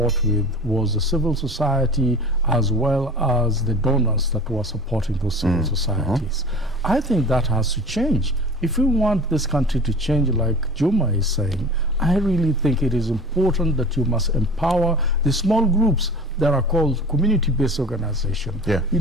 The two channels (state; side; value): normal; both; correlation 0.40